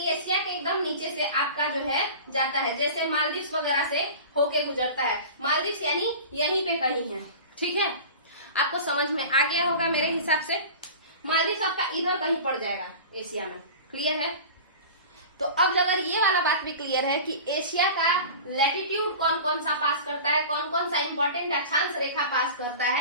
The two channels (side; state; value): both; inverted; correlation -0.36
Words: एशिया के एकदम नीचे से आपका जो है जाता है, जैसे मालदीव्स वगैरह से होके गुजरता है। मालदीव्स यानी यहीं पे कहीं है, ठीक है। आपको समझ में आ गया होगा मेरे हिसाब से। मालदीव्स आपका इधर कहीं पड़ जाएगा एशिया में, क्लियर है। तो अब अगर ये वाला बात भी क्लियर है कि एशिया का लैटिट्यूड कौन कौन सा पास करता है, कौन कौन सा इंपॉर्टेंट अक्षांश रेखा पास करता